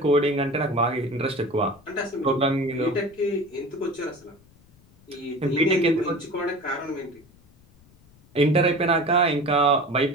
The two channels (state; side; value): noise; left; rumble, 28 dB below the sound